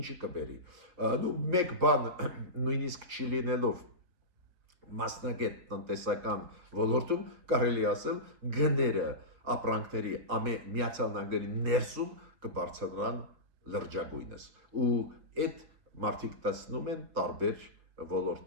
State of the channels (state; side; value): late; left; 5.7 ms